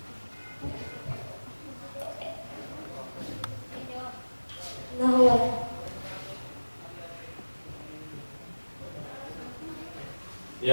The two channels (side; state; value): both; inverted; correlation -1.00